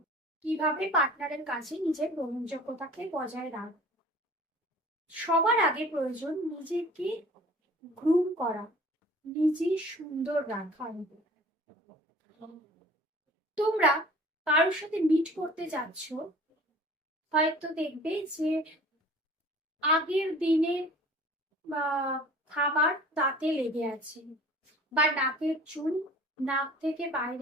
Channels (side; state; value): both; normal; correlation 0.46